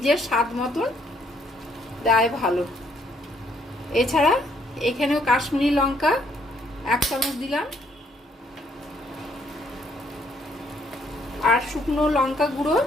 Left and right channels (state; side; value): normal; both; correlation 0.68